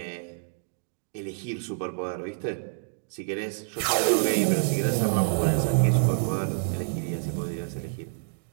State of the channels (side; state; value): left; silent; digital silence